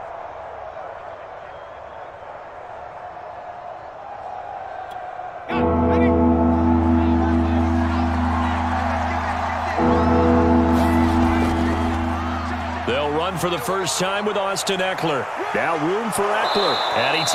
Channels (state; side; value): identical; both; correlation 1.00